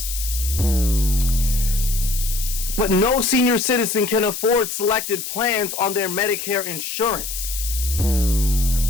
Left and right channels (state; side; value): noise; left; hiss, 6 dB below the sound